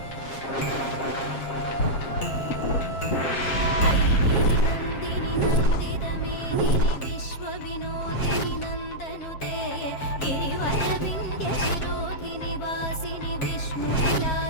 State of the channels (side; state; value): right; late; 7.4 ms